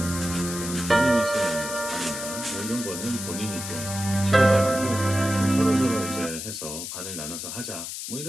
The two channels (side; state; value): left; noise; hiss, 7 dB below the sound